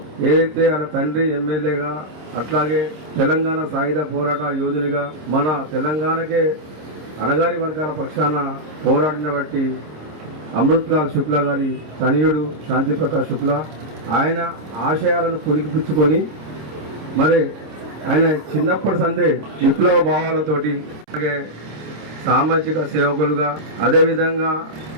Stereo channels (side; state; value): left; late; 26 ms